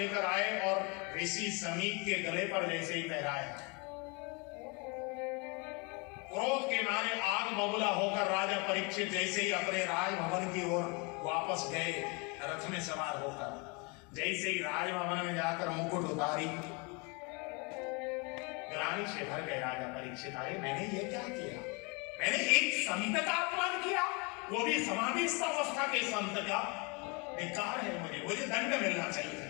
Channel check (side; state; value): right; quieter; 30.7 dB